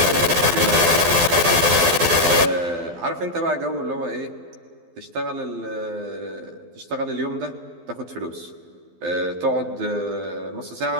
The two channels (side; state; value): left; late; 12 ms